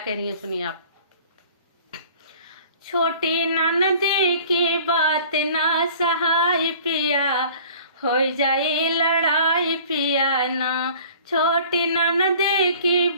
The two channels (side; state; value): both; inverted; correlation -0.48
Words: रही हैं सुनिए आप। छोटी ननदी की बात ना सहाय पिया, हो जाए लड़ाई पिया ना। छोटी ननदी की